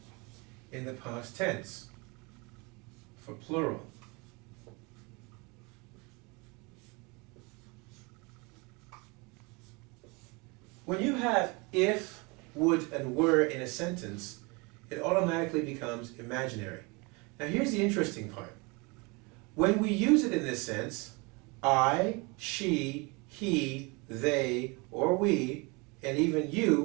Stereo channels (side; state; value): left; quieter; 28.2 dB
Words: in the past tense for plural. When you have if, would, and were in a sentence, it automatically becomes imaginary. Now here's the interesting part. When we use it in this sense, I, she, he, they, or we, and even